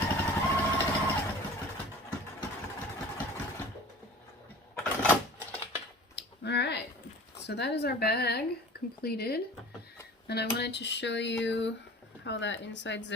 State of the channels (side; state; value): both; normal; correlation 0.42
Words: Alright, So that is our bag completed. And I wanted to show you how that inside